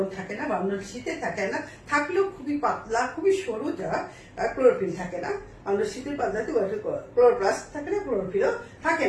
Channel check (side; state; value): both; identical; correlation 1.00